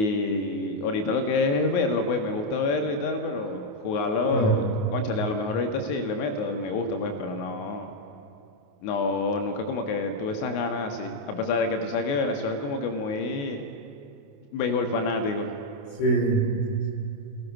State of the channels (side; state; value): right; late; 28 ms